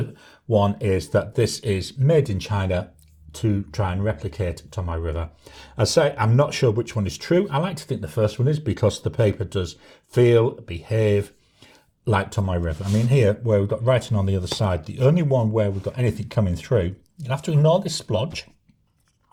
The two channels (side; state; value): both; identical; correlation 1.00